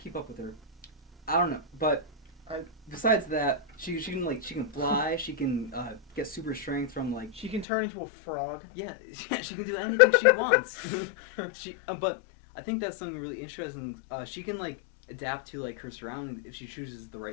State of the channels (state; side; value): drops out; right; at 7.7 s